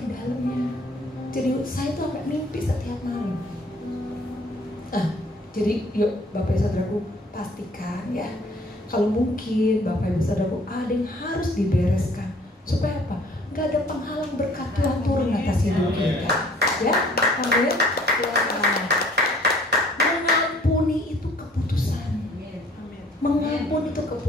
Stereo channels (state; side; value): normal; both; correlation 0.56